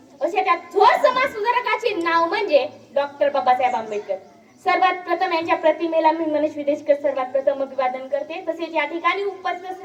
अशा त्या थोर समाज सुधारकाचे नाव म्हणजे डॉक्टर बाबासाहेब आंबेडकर. सर्वात प्रथम यांच्या प्रतिमेला मी मनीष विदेशकर सर्वात प्रथम अभिवादन करते. तसेच या ठिकाणी उपस्थित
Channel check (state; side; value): identical; both; correlation 1.00